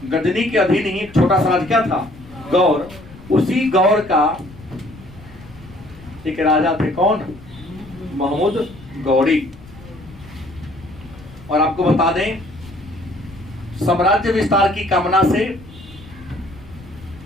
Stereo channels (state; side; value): noise; left; rumble, 19 dB below the sound